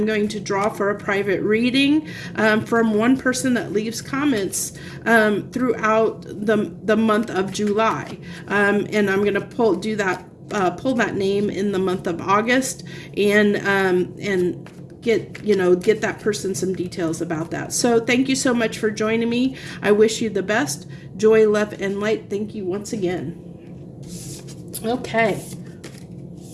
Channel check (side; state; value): both; identical; correlation 1.00